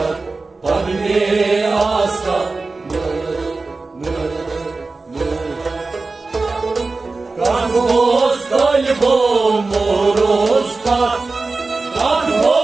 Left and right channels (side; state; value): left; quieter; 3.7 dB